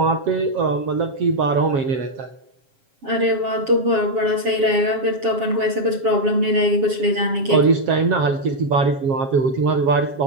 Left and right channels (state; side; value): late; left; 7.4 ms